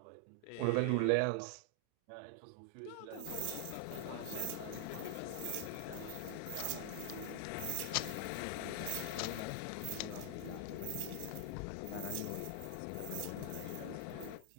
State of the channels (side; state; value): both; different; correlation 0.00